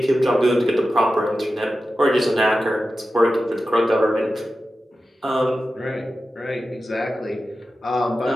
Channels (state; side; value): normal; both; correlation 0.93